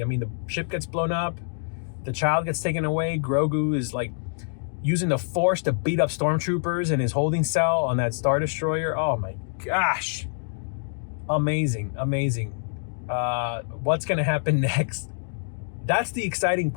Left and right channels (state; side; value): silent; right; digital silence